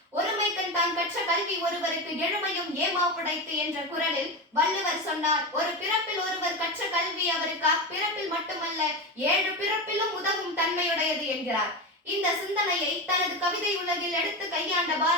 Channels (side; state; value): both; normal; correlation 0.19